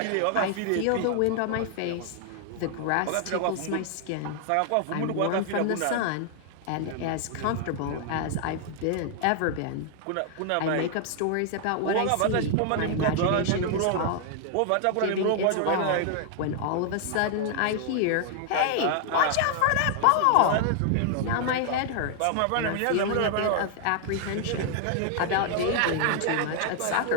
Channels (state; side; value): different; both; correlation 0.00